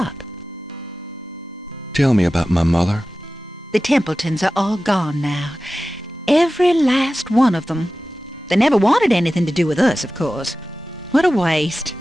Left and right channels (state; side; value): normal; both; correlation 0.95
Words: Tell me about my mother. The Templetons are all gone now. Every last one of them. They never wanted anything to do with us, of course. What a waste.